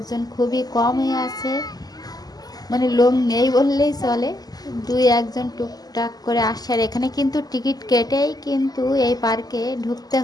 খুবই কম হয়ে আছে। মানে লোক নেই বললেই চলে, দুই একজন টুকটাক করে আসে। আর এখানে কিন্তু টিকিট কেটেই কিন্তু এই পার্কে ঢুকতে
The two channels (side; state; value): right; late; 0.19 ms